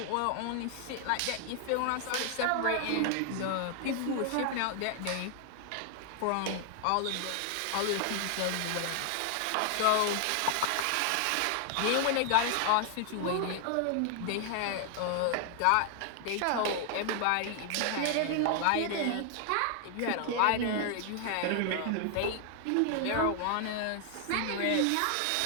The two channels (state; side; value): different; both; correlation 0.00